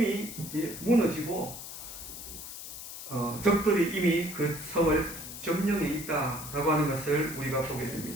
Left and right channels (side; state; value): left; noise; hiss, 10 dB below the sound